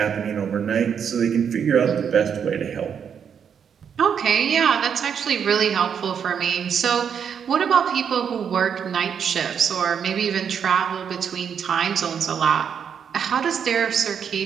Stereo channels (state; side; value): quieter; left; 7.6 dB